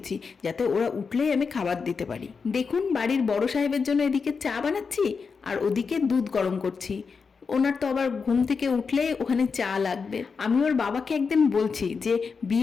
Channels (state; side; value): quieter; right; 5.3 dB